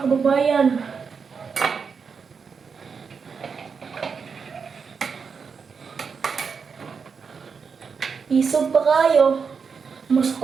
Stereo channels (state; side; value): quieter; left; 5.7 dB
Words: kababayan. Isog pa kayo.